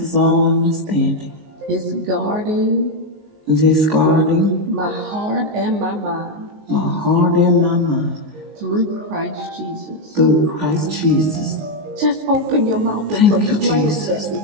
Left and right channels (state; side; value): late; left; 19 ms